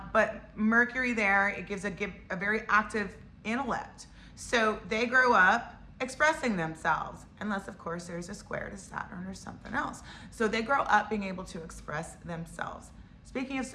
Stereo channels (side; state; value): both; identical; correlation 1.00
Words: Mercury there, it gives a very active intellect. So they grow up expressing themselves, unless of course there's a square to Saturn or something else. So they grow up being able to express themselves. Speaking of